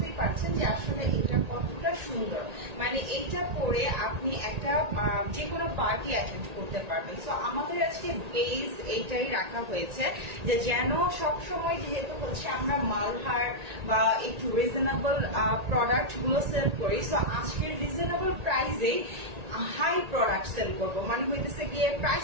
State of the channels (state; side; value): late; left; 1.8 ms